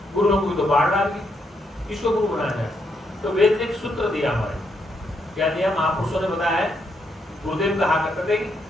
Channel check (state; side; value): normal; both; correlation 0.78